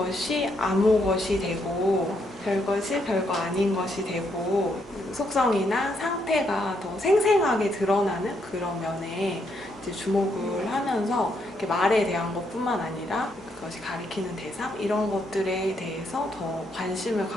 아무 것이 되고 별것이 별거 아닌 것이 되고 속성이나 상태가 더 생생하게 드러나는 그런 면에 이제 주목을 하면서 이렇게 말에 대한 것뿐만 아니라 그것이 가리키는 대상 이런 것들에 대해서 더 관심을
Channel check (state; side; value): normal; both; correlation 0.76